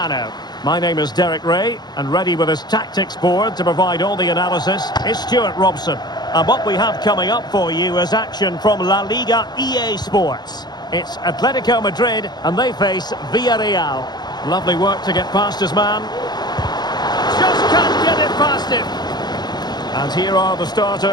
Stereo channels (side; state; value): right; late; 0.20 ms